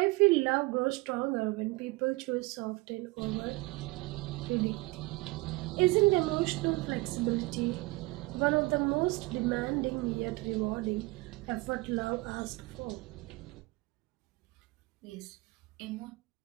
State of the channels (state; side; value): quieter; left; 23.2 dB